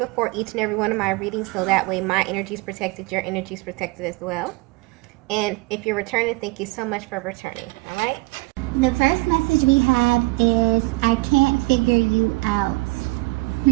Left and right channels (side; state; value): left; quieter; 24.5 dB